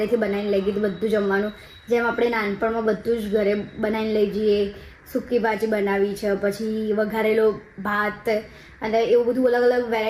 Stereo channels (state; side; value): identical; both; correlation 1.00